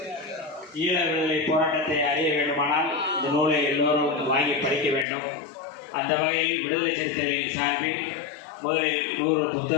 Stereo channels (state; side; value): drops out; right; at 5.1 s